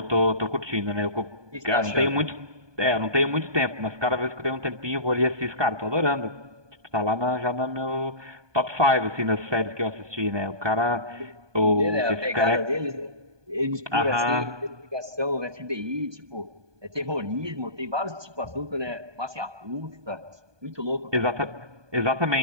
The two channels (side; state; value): left; late; 1.2 ms